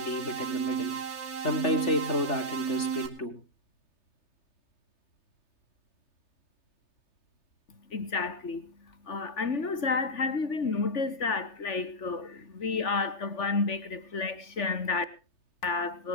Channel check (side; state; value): right; late; 3.4 ms